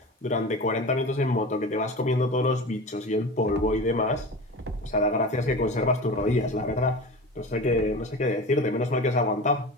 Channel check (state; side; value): normal; both; correlation 0.32